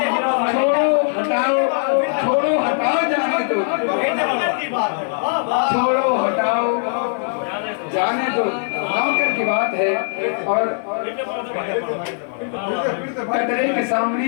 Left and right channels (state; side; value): silent; right; 58 dB below the other